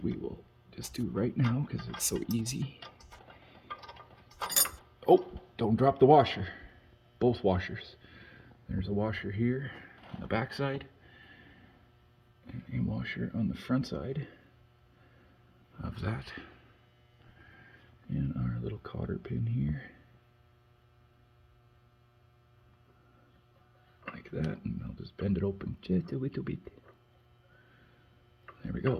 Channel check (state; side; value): identical; both; correlation 1.00